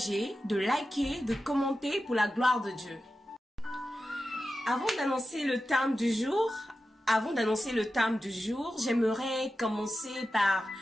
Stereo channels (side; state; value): both; normal; correlation 0.92